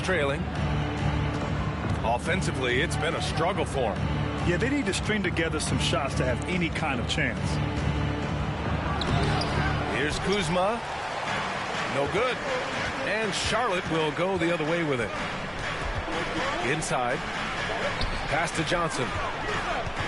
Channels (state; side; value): identical; both; correlation 1.00